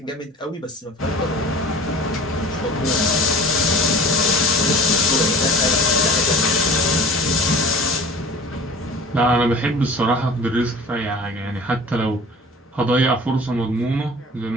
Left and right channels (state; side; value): normal; both; correlation 0.41